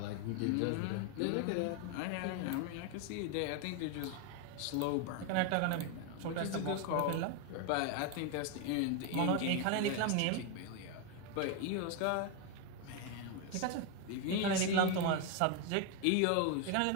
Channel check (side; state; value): both; different; correlation 0.01